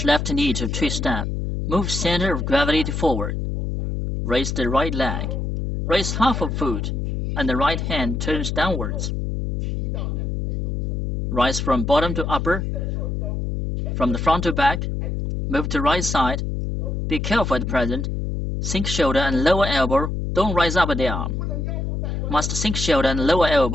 left knee to twist step. Move center of gravity to forward. Raise the right leg. Raise half of foot, and the right hand turns downwards. Rise from bottom to upper. From the front to back. Move to right side. Be careful at the present. Sink shoulder and lower elbow. Don't rise up at the arm. Must sink shoulder and lower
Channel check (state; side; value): noise; left; hum, 1 dB below the sound